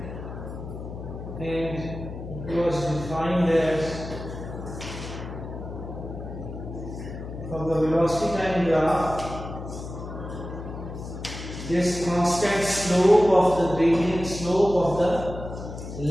and it was defined as from the velocity time graph, this constant slope of the gradient slope of the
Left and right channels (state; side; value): noise; left; hum, 9 dB below the sound